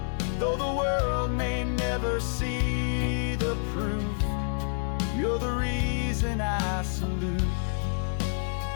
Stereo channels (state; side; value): silent; right; 59 dB below the other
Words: Though the world may never see the proof, you're the reason I salute.